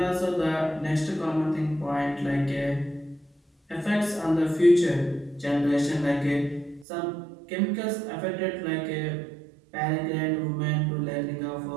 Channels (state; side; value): drops out; left; at 6.9 s